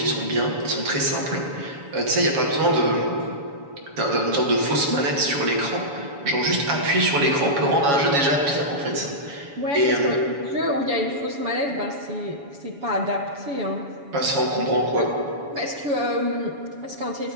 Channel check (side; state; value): left; late; 7.1 ms